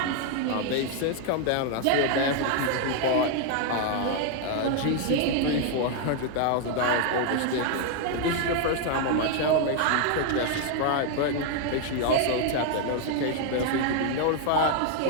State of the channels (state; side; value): different; both; correlation 0.00